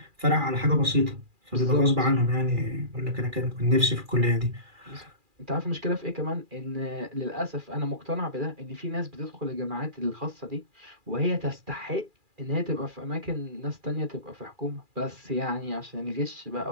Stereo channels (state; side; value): late; left; 2.4 ms